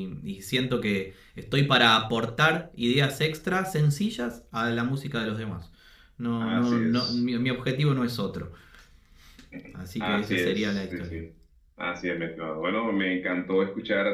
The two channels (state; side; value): identical; both; correlation 1.00